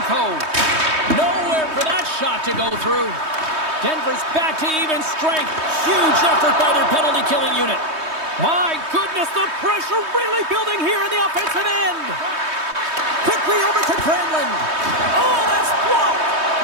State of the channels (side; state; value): left; late; 3.2 ms